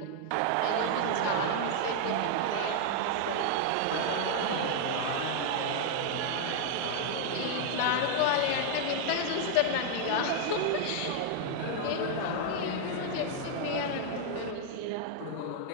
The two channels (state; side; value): different; both; correlation 0.00